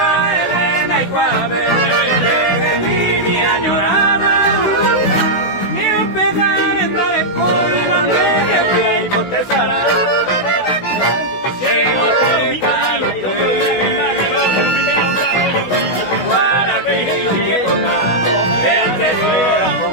Elena y Guave, que mi añorada, ni un pegar en dar el coibán que fui y potesará. Llego te calo, guaraquillo y que toca, el tesoro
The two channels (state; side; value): late; right; 16 ms